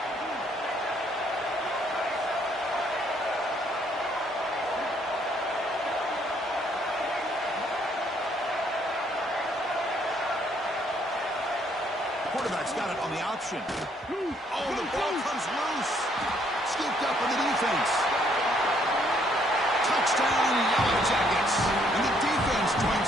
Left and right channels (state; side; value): normal; both; correlation 0.67